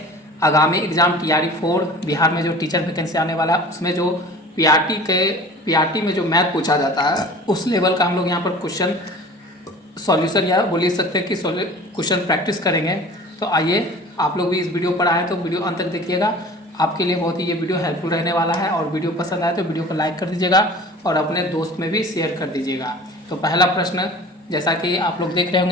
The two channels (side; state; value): both; normal; correlation 0.42